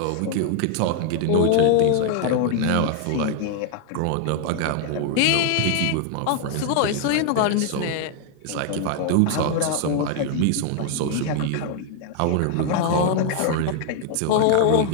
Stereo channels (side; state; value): both; different; correlation 0.00